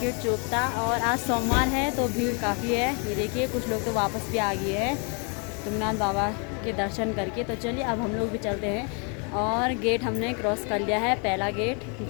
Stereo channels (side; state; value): right; quieter; 36.4 dB